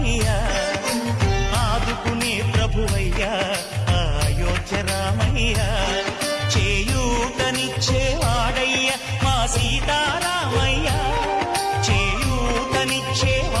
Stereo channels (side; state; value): both; identical; correlation 1.00